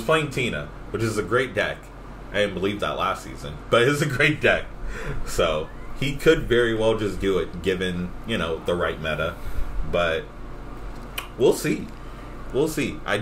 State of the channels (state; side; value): identical; both; correlation 1.00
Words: playing Tina, which is a great deck. I didn't believe that last season, but it's a great deck. So he could very well just do it, given the right meta. But we'll see. I